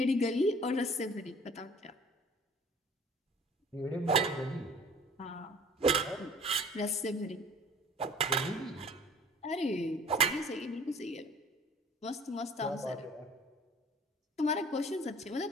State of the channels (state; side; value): normal; both; correlation 0.49